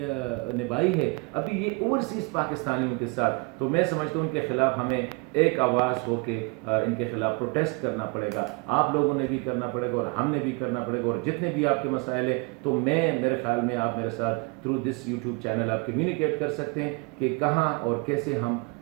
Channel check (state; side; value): quieter; left; 31.0 dB